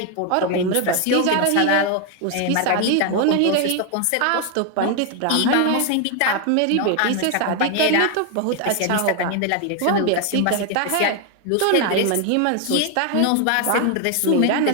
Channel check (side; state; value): both; different; correlation 0.01